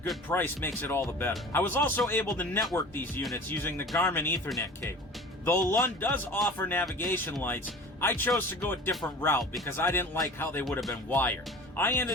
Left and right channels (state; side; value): normal; both; correlation 0.40